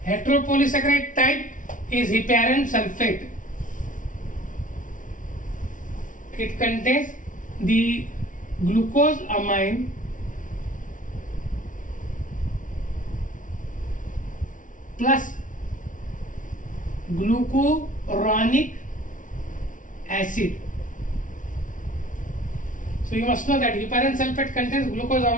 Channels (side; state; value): right; late; 0.38 ms